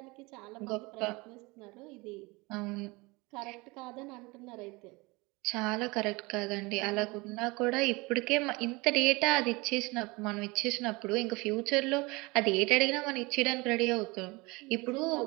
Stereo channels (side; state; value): left; quieter; 24.6 dB